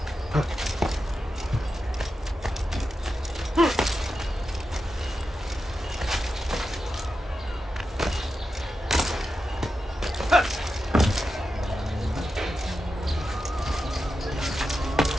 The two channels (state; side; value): normal; both; correlation 0.89